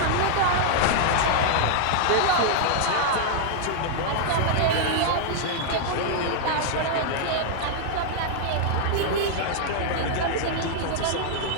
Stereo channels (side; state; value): both; different; correlation 0.00